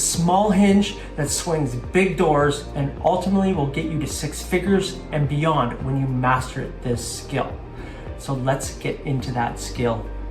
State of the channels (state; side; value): identical; both; correlation 1.00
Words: hinge that swings big doors and ultimately will get you to 6 figures and beyond when you master this skill. So let's get into that skill